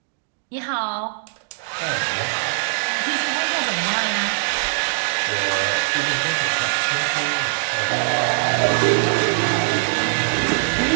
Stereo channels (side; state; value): left; silent; digital silence